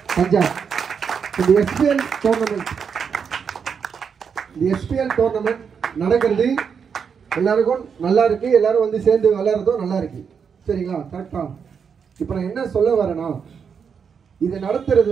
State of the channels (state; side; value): quieter; left; 6.6 dB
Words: பஞ்சாப். இந்த SPL டோர்னமெண்ட் நடக்கிறது எல்லாருக்கும் நல்லா இருக்கு. எல்லாரும் வந்து சேர்ந்து விளையாடுறதும் நல்லா இருக்கு. சரிங்களா? கரெக்டா? இப்போ நான் என்ன சொல்ல வரேன்னா, இதை நடத்துறது